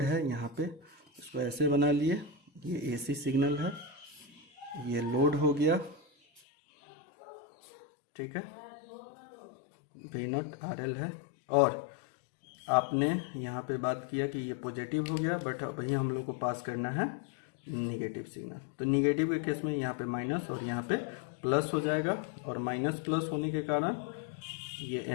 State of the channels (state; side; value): drops out; right; at 6.4 s